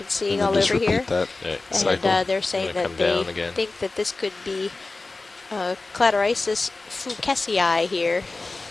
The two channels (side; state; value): right; quieter; 3.4 dB